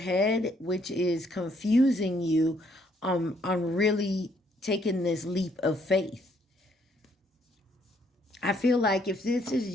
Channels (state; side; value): normal; both; correlation 0.68